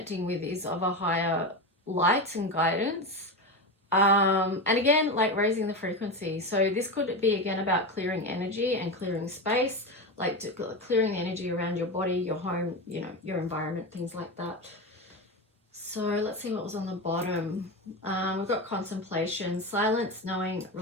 with is of a higher light and guidance. And again, like raising the frequency. So this could be again about clearing energy and clearing space, like clearing the energy around your body, your home, you know, your environment, things like that. So let's see what was on the bottom. We've got contemplation, silence, knowing,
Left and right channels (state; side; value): normal; both; correlation 0.19